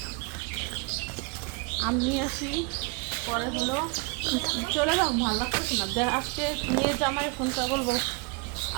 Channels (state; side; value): quieter; left; 30.0 dB